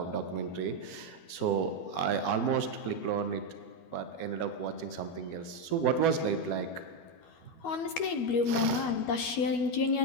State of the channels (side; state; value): right; late; 12 ms